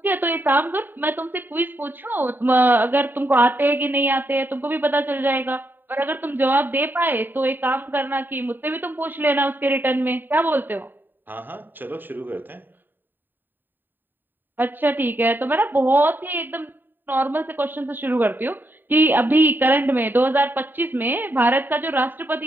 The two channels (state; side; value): late; left; 0.092 ms